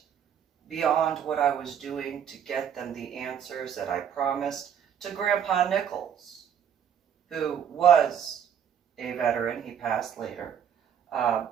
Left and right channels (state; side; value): quieter; left; 8.5 dB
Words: beyond what I was doing to get them the answers that I promised to Grandpa Nichols, who was a veteran. He passed later,